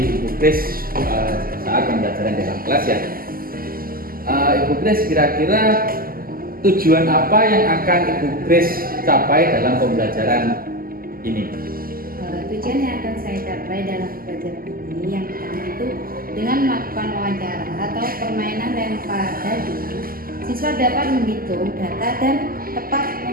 Ibu Kris saat pembelajaran dalam kelas ya. Ibu Kris, kira-kira tujuan apa yang akan Ibu Kris capai dalam pembelajaran ini? Tujuan yang akan saya capai dalam pembelajaran ini yang pertama itu dengan melakukan wawancara atau permainan lempar dadu, siswa dapat menghitung data dan tepat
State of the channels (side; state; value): left; late; 0.42 ms